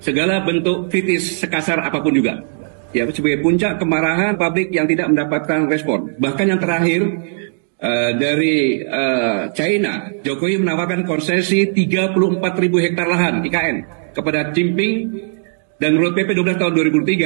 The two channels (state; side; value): silent; left; digital silence